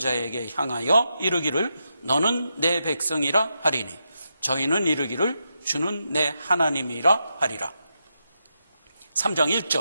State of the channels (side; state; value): both; inverted; correlation -0.85